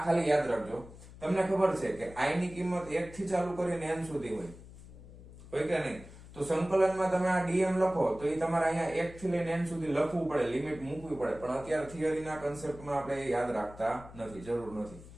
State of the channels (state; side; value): noise; left; hum, 17 dB below the sound